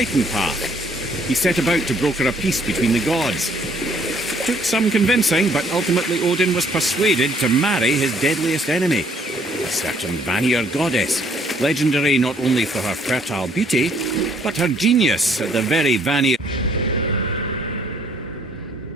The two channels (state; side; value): normal; both; correlation 0.63